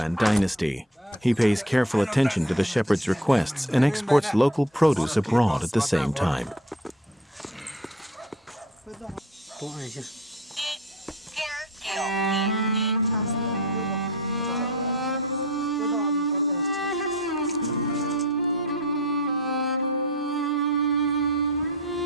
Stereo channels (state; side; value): normal; both; correlation 0.42